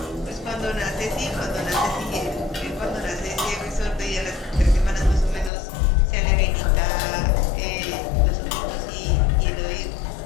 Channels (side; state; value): right; drops out; at 5.5 s